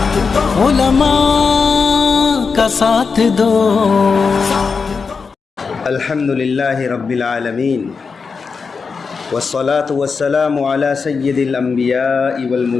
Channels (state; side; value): quieter; right; 5.1 dB